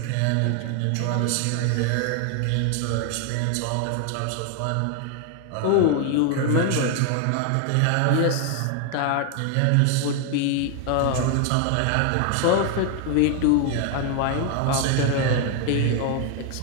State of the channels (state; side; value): different; both; correlation 0.01